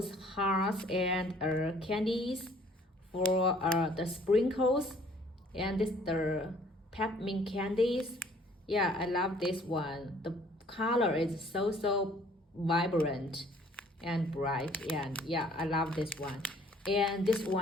hearts and candies for the sprinkles, and this the peppermint candies. Yeah, I love this one. The color is so vibrant and bright, and yeah, I love this one. And this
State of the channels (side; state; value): both; normal; correlation 0.58